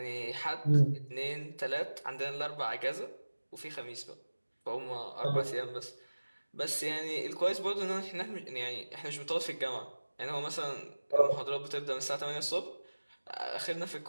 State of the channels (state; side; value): inverted; both; correlation -1.00